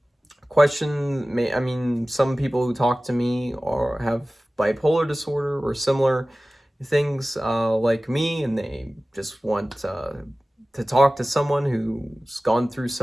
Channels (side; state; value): both; normal; correlation 0.97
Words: question may I mean some people who talk to me or have bipolar disorder or similar things like me, and they just want to talk to someone who's gone through